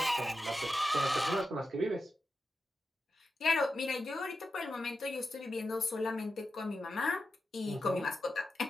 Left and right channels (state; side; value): normal; both; correlation 0.90